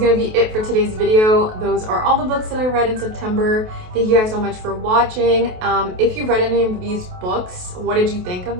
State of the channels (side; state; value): left; late; 28 ms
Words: to be it for today's video. Those are all the books that I read in September. Thank you guys so much for watching. If you've read any of these books, what did you think